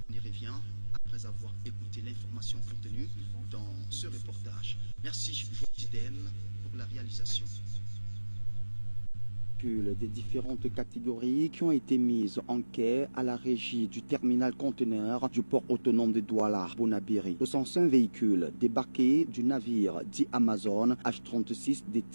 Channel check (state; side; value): inverted; both; correlation -1.00